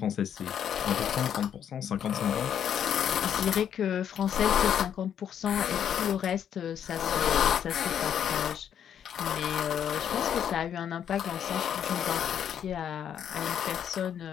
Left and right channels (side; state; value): right; quieter; 9.0 dB